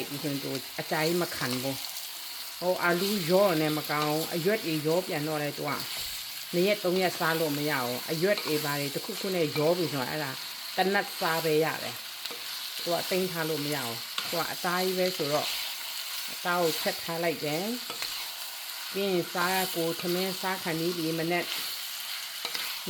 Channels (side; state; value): both; identical; correlation 1.00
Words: ်ပြီးဆိုရင်အကြိုင်မခံဘူးဟိုအာလူရောနဲ့မကောင်းအရွက်တွေရောပြန်တော့လဲတော့2 ရက် 3 ရက်စားလို့မရအောင်အရွက်တွေပါတွေတစ်ခုနဲ့ရောပြီးဆိုတော့အဲ့ဒါတနတ်စားပဲရတယ်သူကတိမ့်ထားလို့မရအောင်သူကအသားကြီးပဲဆိုတော့အသားကိုချက်ထားလိုက်တယ်ပြီးရင်စားကိုသမင်းစားခံပြီးဒီမနေ့